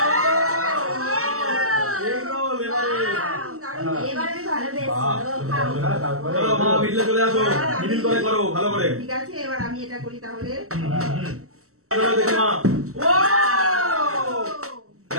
এবারে আমি ভালো বেশ চলো মা মিডলে চলে আসো মিডিল করে করো ভালো করে। ঠিক আছে এবার আমি এটা করি তাহলে। দেখি মা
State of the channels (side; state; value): left; late; 0.64 ms